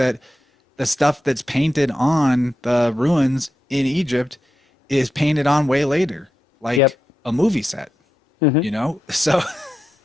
the stuff that's painted on the ruins in Egypt is painted on way later, Yep. like a movie set, So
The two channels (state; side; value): normal; both; correlation 0.89